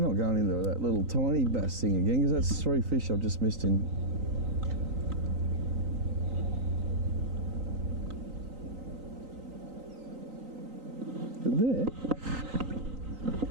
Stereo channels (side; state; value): left; late; 3.9 ms